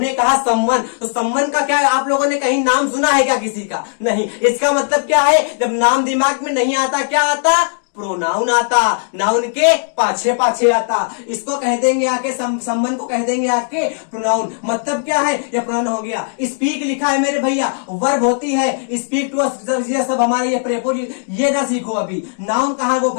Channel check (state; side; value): silent; right; digital silence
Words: कहा समवन, तो समवन का क्या है, आप लोगों ने कहीं नाम सुना है क्या किसी का, नहीं। इसका मतलब क्या है, जब नाम दिमाग में नहीं आता क्या आता, प्रोनाउन आता, नाउन के पाछे पाछे आता, इसको कह देंगे आके संबंध को कह देंगे आके प्रोनाउन। मतलब क्या है, ये प्रोनाउन हो गया। स्पीक लिखा है मेरे भैया, वर्ब होती है, स्पीक टू अस, ये सब हमारे ये प्रेपोजिशन, ये ना सीखो अभी। नाउन कहां वो